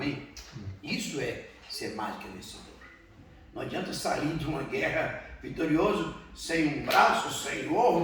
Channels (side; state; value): both; identical; correlation 1.00